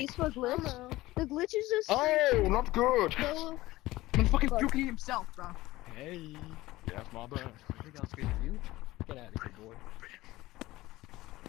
useful glitch. The glitch is just Oh, not good. go. I'm fucking Fuck. puking himself, bro. Hey. Yeah, that's my bad. I think I'll speak to you. Get out of here, boy.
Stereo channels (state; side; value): quieter; right; 17.9 dB